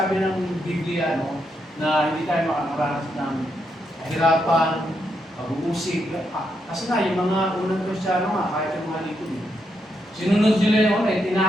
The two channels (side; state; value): both; normal; correlation 0.80